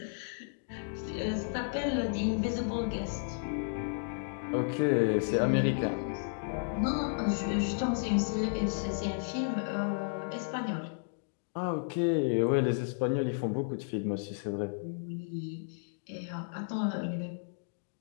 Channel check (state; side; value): silent; right; digital silence